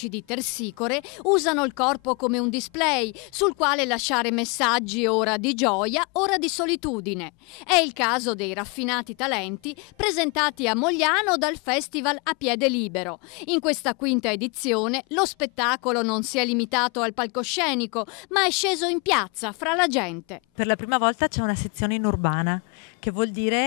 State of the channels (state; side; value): quieter; right; 31.6 dB